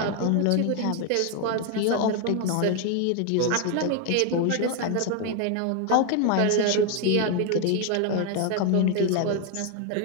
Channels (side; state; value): both; different; correlation 0.01